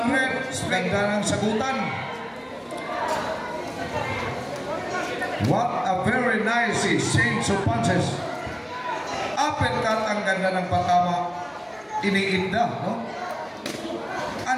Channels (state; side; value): identical; both; correlation 1.00